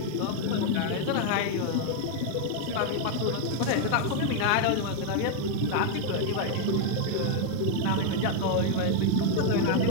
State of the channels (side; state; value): both; different; correlation 0.00